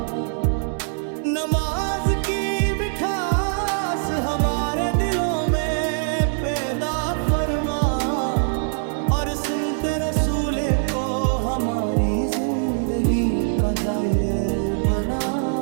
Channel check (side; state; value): left; silent; digital silence